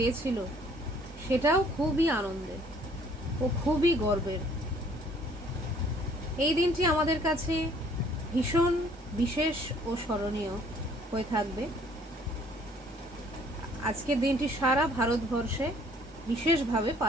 সেটাও খুবই আনন্দের ও খুবই গর্বের। এই দিনটি আমাদের কাছে ভীষণ বিশেষ ও স্মরণীয় হয়ে থাকবে। আজকের দিনটি সারা ভারতবর্ষে বিশেষভাবে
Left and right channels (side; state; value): both; normal; correlation 0.59